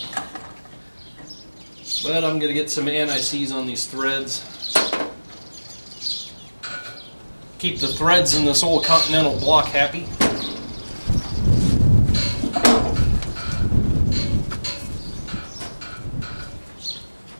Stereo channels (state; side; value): inverted; both; correlation -1.00